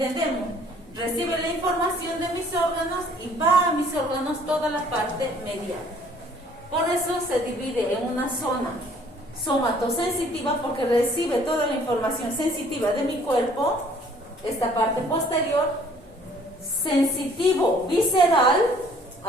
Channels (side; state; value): both; normal; correlation 0.57